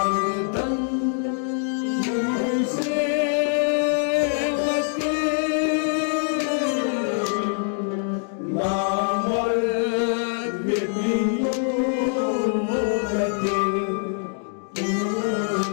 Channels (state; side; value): silent; right; 56 dB below the other